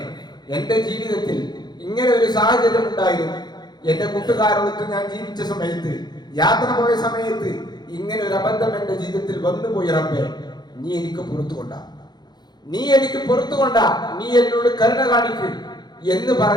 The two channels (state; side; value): late; right; 0.20 ms